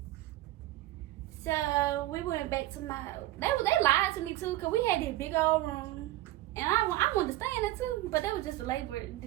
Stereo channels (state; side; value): quieter; left; 16.1 dB